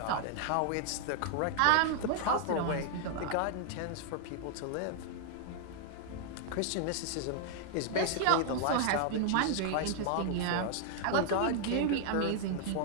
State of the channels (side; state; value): both; different; correlation 0.00